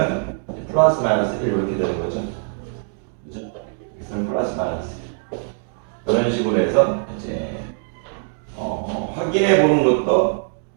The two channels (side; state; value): left; silent; 64 dB below the other